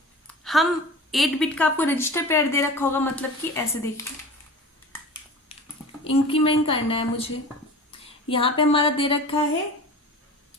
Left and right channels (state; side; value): normal; both; correlation 0.36